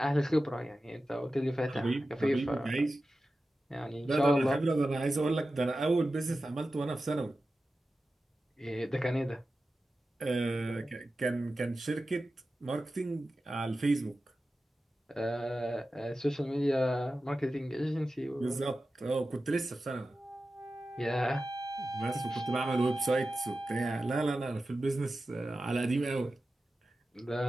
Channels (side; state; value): both; normal; correlation 0.93